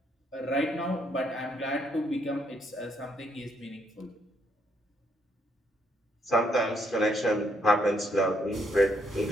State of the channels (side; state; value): both; normal; correlation 0.73